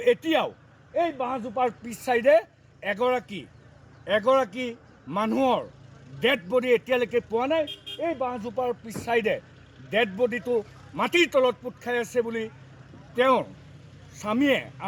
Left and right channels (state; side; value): identical; both; correlation 1.00